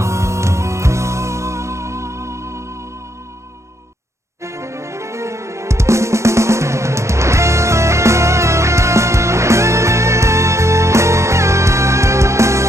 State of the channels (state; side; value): late; left; 0.14 ms